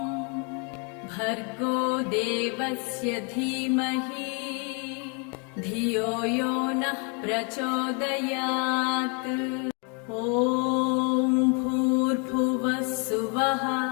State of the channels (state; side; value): quieter; right; 36.0 dB